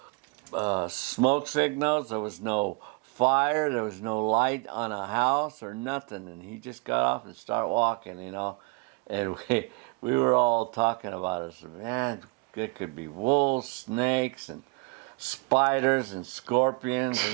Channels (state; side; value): quieter; left; 29.7 dB